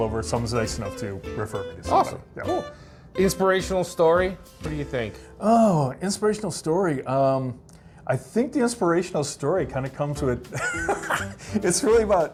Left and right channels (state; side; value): identical; both; correlation 1.00